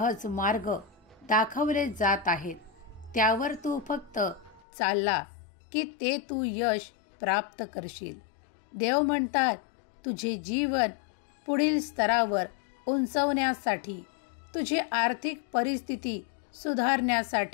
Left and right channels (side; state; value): right; drops out; at 4.6 s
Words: मार्ग दाखवले जात आहेत. त्यावर तू फक्त चालला की ते तू यश प्राप्त करशील. देव म्हणतात, तुझे जीवन पुढील स्तरावर उंचवण्यासाठी, तुझी आर्थिक परिस्थिती